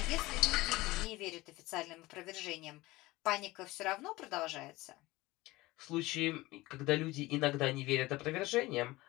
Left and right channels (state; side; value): quieter; right; 19.9 dB